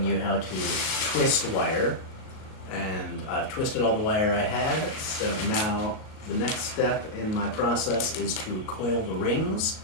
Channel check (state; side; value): late; right; 38 ms